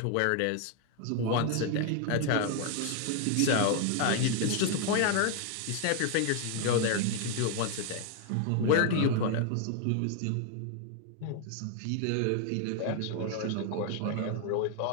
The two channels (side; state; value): both; different; correlation 0.00